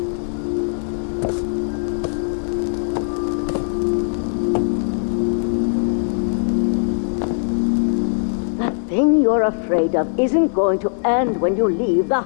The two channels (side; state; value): right; silent; 66 dB below the other